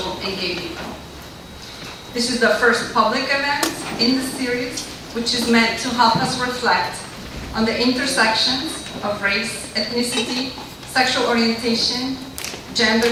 and gay people. This is the first public event in the series, which is meant to help us reflect on the intersections of race, ethnicity, sexual orientation, gender,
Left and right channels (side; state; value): both; identical; correlation 1.00